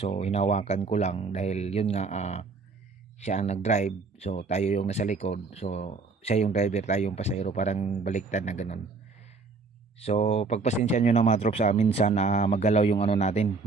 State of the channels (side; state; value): left; quieter; 4.3 dB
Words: hinawakan ko lang dahil yun nga, siya ang nag-drive, so tayo yung nasa likod. So siya yung driver, tayo yung pasahero, parang baliktad na ganun. So pagpasensya nyo na mga trops, minsan magalaw yung natin,